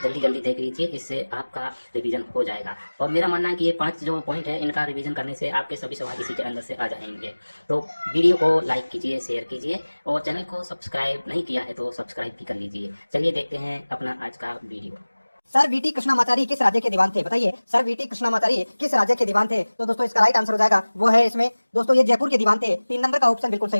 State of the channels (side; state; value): both; inverted; correlation -1.00